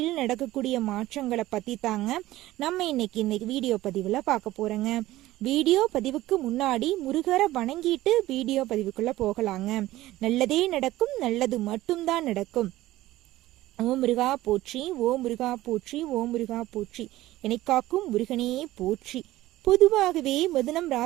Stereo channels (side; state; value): left; quieter; 16.3 dB